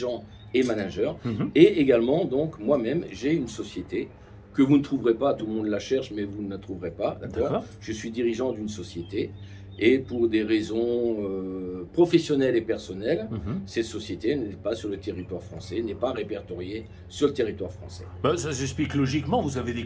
et managers. Et également, donc, moi-même, j'ai une société que vous ne trouverez pas, tout le monde la cherche, mais vous ne la trouverez pas, d'accord? Je suis dirigeant d'une société. Et pour des raisons professionnelles et personnelles, cette société n'est pas sur le territoire français, n'est pas répertoriée sur le territoire français. Ça s'explique logiquement, vous avez des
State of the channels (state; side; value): identical; both; correlation 1.00